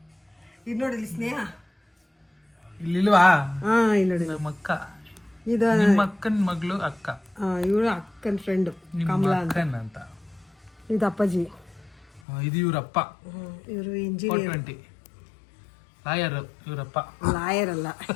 ಇದು ನೋಡಿ ಇಲ್ಲಿ ಸ್ನೇಹ ಇಲ್ಲಿಲ್ವಾ? ಇಲ್ಲಿ ನೋಡಿ ನಮ್ಮ ಅಕ್ಕ, ಇದು ನಿಮ್ಮ ಅಕ್ಕನ ಮಗಳು ಅಕ್ಕ, ಇವಳು ಅಕ್ಕನ ಫ್ರೆಂಡ್ ನಿಮ್ಮ ಅಕ್ಕನ್ ಅಂತ. ಇದು ಅಪ್ಪಾಜಿ, ಇದು ಇವ್ರಪ್ಪ. ಇವರು ಇಂಜಿನಿಯರ್ 420 ಲಾಯರ್. ಇವರಪ್ಪ ಲಾಯರ್ ಅಲ್ಲ,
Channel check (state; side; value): drops out; right; at 12.2 s